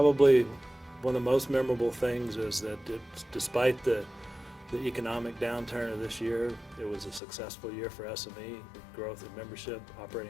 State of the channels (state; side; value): drops out; right; at 7.2 s